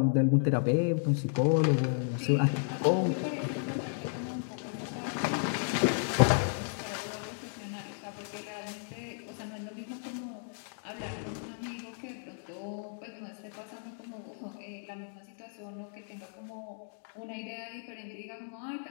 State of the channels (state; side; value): silent; right; digital silence